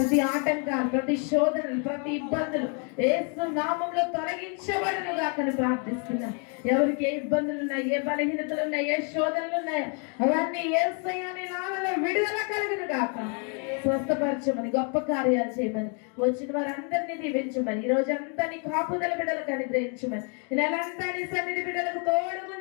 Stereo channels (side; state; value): right; quieter; 38.9 dB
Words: ఆటంకాలు ప్రతి శోధనలు ప్రతి ఇబ్బందులు యేసు నామములో తొలగించబడును గాకని ప్రార్థిస్తున్నా. ఎవరికి ఏ ఇబ్బందులు ఉన్నాయి, ఏ బలహీనతలు ఉన్నాయి, ఏ శోధనలు ఉన్నాయో అవన్నీ యేసయ్య నీ నామములో విడుదల కలుగును గాక. స్వస్థపరచమని గొప్ప కార్యాలు చేయమని వచ్చిన వారందరినీ దీవించమని ఈ రోజంతా నీ కాపుదల బిడ్డలకు అనుగ్రహించమని ఈ నెలంతా నీ సన్నిధి బిడ్డలకు తోడు